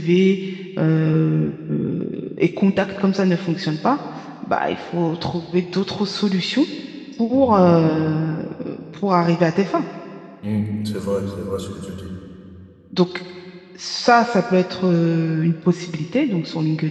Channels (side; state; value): both; identical; correlation 1.00